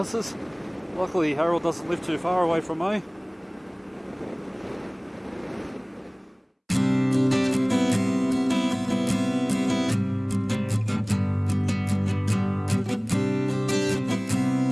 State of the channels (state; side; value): identical; both; correlation 1.00